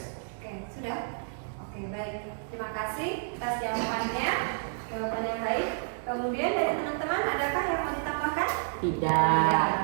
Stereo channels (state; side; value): silent; left; digital silence